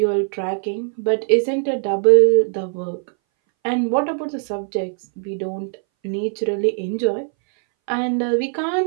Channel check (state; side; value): silent; left; 62 dB below the other